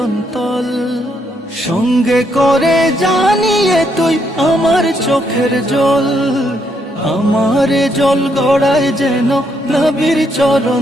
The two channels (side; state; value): both; normal; correlation 0.75